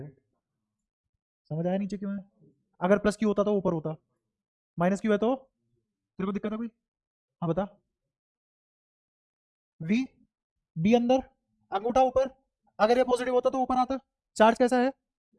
समझ आया नीचे क्यों है, अगर प्लस q होता तो ऊपर होता, -q है तो तेरे को दिक्कत है कोई, हाँ बता। v, b अंदर, अंगूठा ऊपर, अगर ये पॉजिटिव होता तो ऊपर आता, चार्ज कैसा है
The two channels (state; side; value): identical; both; correlation 1.00